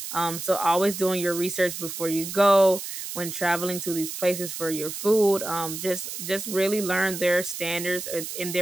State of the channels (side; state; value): right; noise; hiss, 7 dB below the sound